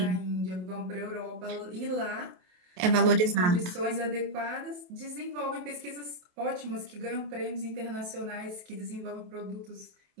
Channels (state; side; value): late; left; 28 ms